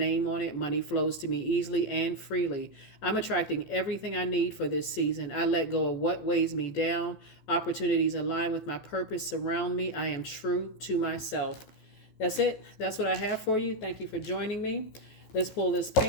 on it. Money flows to me easily and freely. I'm attracting everything I need for this season. I let go of what weighs me down. Opportunities align with my purpose surround me. I am true to myself. That's it. That's what I have for you. Thank you for joining me. Let's pull this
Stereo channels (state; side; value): late; right; 14 ms